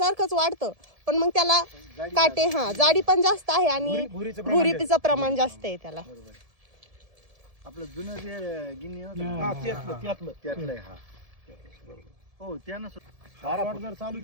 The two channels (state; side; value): late; left; 1.7 ms